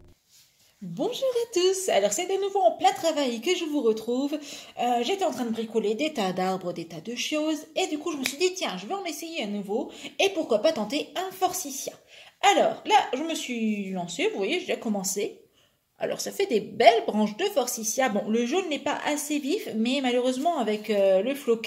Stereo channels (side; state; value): both; identical; correlation 1.00